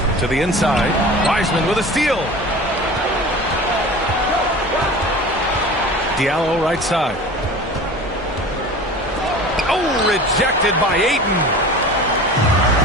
To the inside. Wiseman with a steal. Diallo right side. Oh, rejected by Ayton.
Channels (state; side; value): normal; both; correlation 0.38